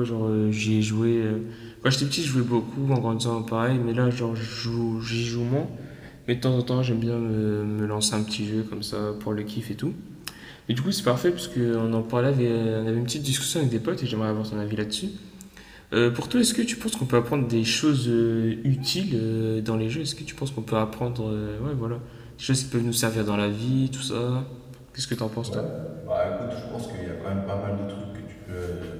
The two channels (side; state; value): both; identical; correlation 1.00